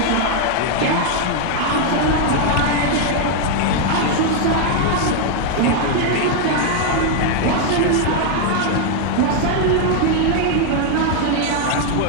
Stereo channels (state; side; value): different; both; correlation 0.00